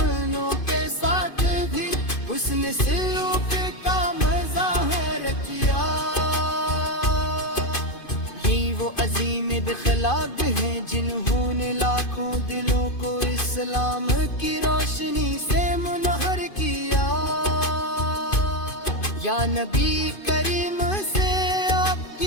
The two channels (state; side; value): late; right; 2.5 ms